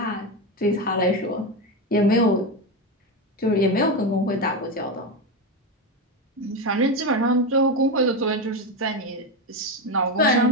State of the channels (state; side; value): normal; both; correlation 0.14